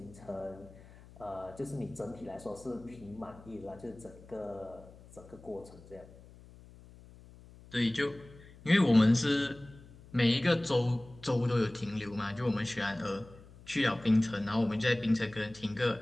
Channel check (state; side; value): noise; left; hum, 21 dB below the sound